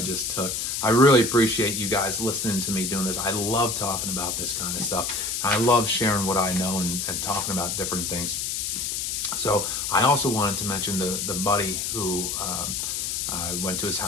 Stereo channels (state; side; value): noise; left; hiss, 2 dB below the sound